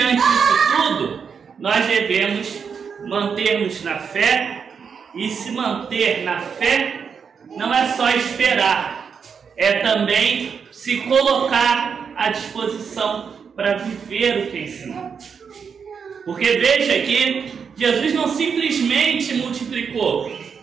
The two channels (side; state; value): left; quieter; 6.4 dB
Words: disso tudo, nós devemos manter-nos na fé, e se manter na fé não é só esperar, é também se colocar à disposição para viver o que ensinou. Porque veja que Jesus não simplesmente multiplicou.